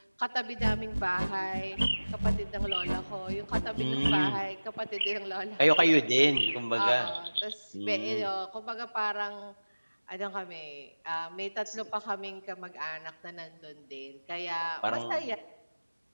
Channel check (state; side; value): inverted; both; correlation -1.00